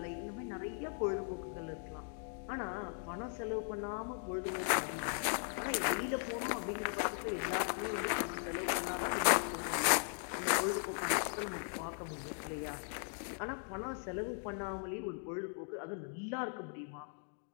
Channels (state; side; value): silent; right; 52 dB below the other